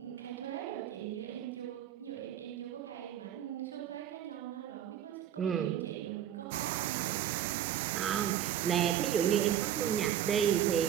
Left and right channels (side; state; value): left; quieter; 10.4 dB